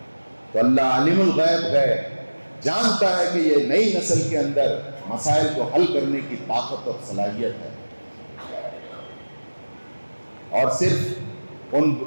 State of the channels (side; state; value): both; inverted; correlation -1.00